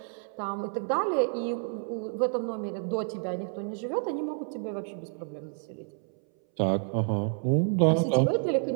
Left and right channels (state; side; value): silent; left; 58 dB below the other